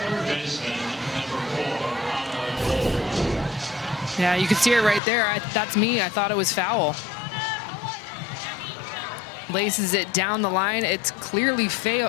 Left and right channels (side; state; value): right; drops out; at 5.0 s